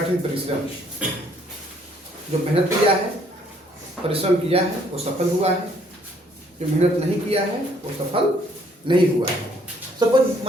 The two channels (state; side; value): normal; both; correlation 0.64